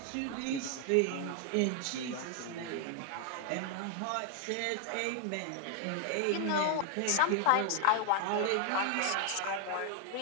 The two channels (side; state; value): both; different; correlation 0.00